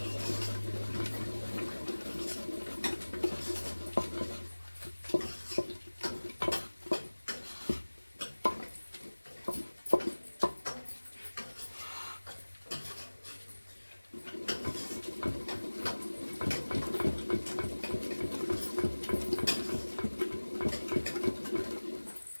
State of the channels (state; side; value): inverted; both; correlation -1.00